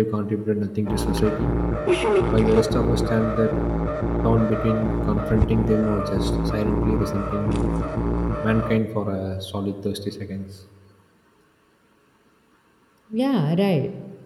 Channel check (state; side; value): identical; both; correlation 1.00